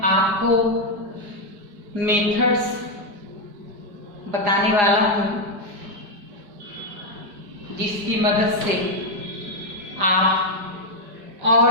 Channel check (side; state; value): left; late; 5.0 ms